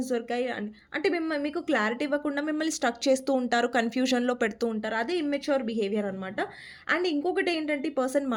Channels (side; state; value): both; identical; correlation 1.00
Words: దొరికాయి అంటే మీకు క్లారిటీ ఇవ్వకుండా మిమ్మల్ని స్ట్రక్ చేస్తూ ఉంటారు. కన్‌ఫ్యూజన్‌లో పెడుతూ ఉంటారు. అదే ఇమ్మెచ్యూర్ బిహేవియర్ అనమాట. అండ్ ఇంకొకటి ఏంటంటే ఈ పర్సన్